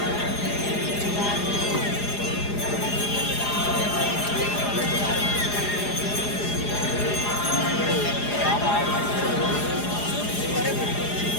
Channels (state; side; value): late; right; 4.9 ms